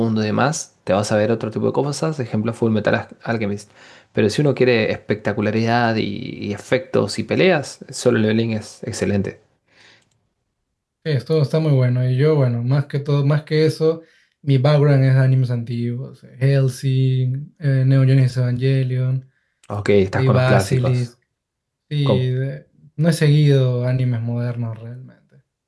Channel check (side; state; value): both; identical; correlation 1.00